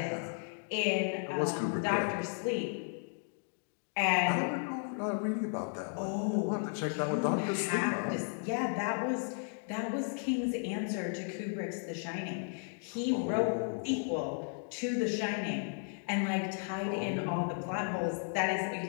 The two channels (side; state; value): right; silent; 55 dB below the other